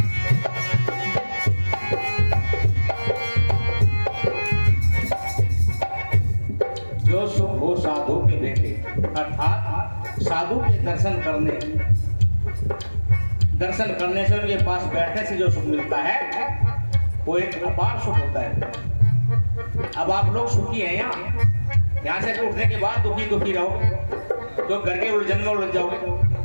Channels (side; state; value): both; inverted; correlation -1.00